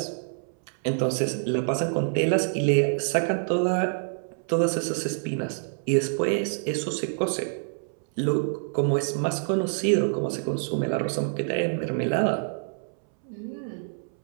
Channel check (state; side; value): silent; left; 60 dB below the other